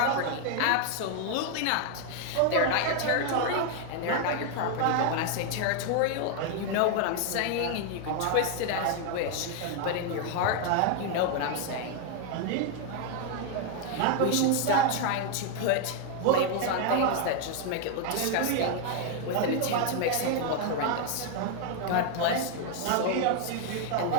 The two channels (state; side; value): different; both; correlation 0.01